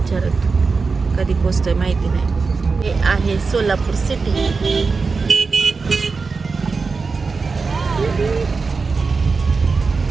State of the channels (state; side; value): quieter; left; 4.5 dB